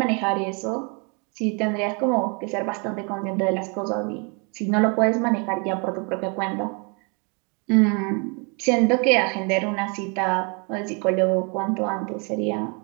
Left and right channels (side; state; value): left; quieter; 34.1 dB